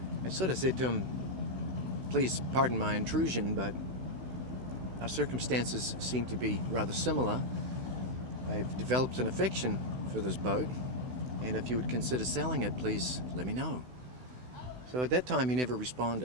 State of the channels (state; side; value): late; left; 16 ms